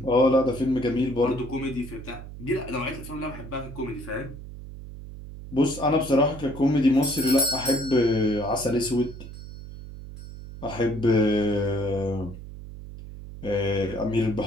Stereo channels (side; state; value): right; noise; hum, 13 dB below the sound